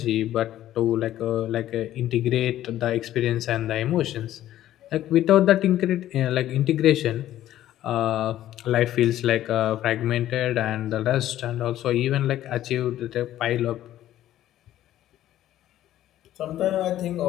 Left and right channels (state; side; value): quieter; right; 13.0 dB